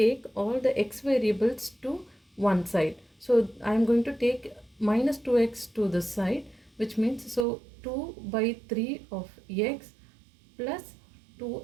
all the x variables to one side. So I am going to take minus 2x to this side, which means so 2 by 3 of x plus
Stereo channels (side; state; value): left; drops out; at 7.5 s